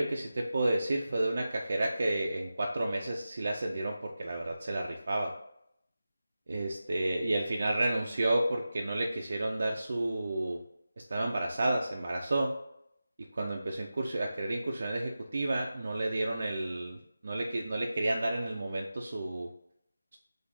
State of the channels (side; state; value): both; inverted; correlation -0.94